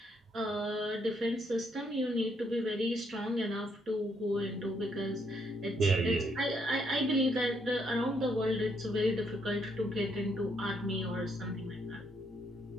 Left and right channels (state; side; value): normal; both; correlation 0.73